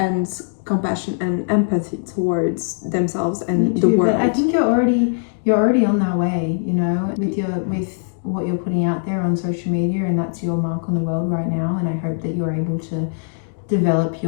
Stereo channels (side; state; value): right; silent; digital silence